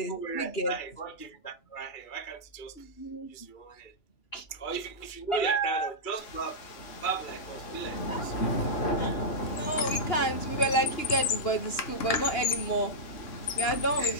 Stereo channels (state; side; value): late; right; 2.9 ms